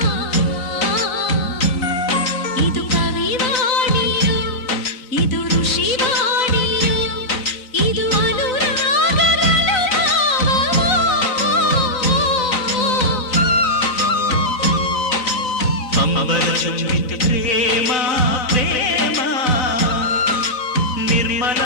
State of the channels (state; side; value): late; right; 4.0 ms